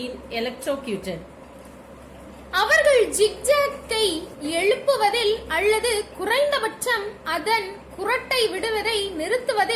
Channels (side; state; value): both; identical; correlation 1.00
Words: electrocuted. அவர்கள் ஜிக்ஜாக்கை எழுப்புவதில் அல்லது குறைந்தபட்சம் அதன் குரட்டை விடுவதை